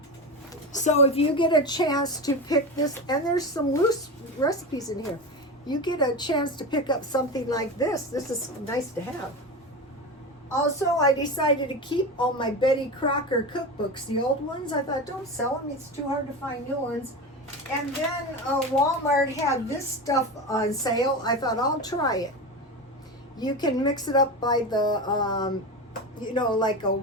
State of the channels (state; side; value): normal; both; correlation 0.23